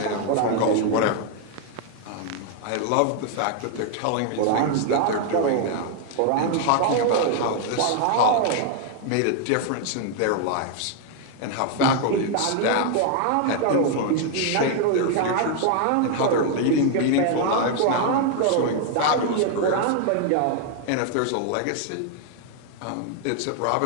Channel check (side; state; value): both; different; correlation 0.00